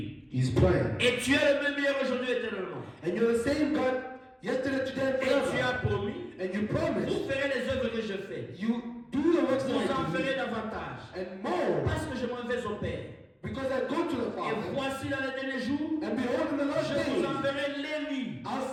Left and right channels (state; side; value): identical; both; correlation 1.00